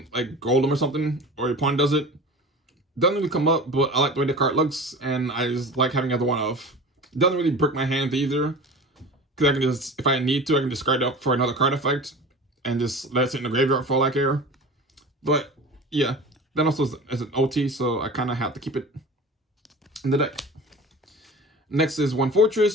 like Golem or something, or your opponent does it. Doesn't really come up, but I like the way the card looks, and I just like having the other 1-off. It doesn't really break my hands either, because I can just, if I need to, I can discard it up for another card effect, and just let it sit in the graveyard for all I care. But yeah, that also is an OT, so I kind of have to keep it in the deck. Next is 1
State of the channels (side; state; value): both; normal; correlation 0.35